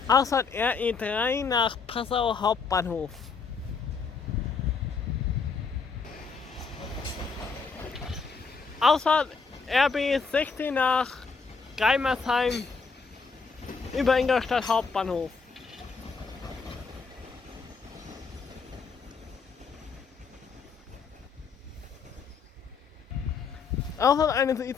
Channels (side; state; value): right; quieter; 5.1 dB